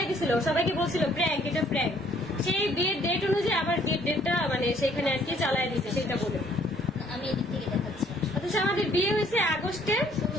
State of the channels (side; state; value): both; normal; correlation 0.62